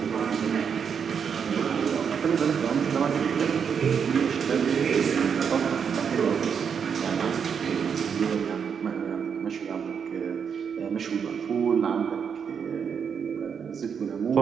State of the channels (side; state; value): left; quieter; 6.9 dB